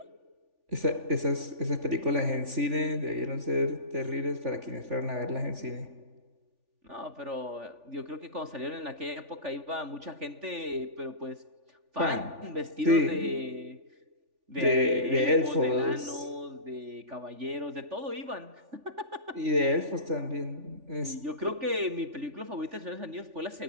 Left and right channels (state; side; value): late; left; 3.4 ms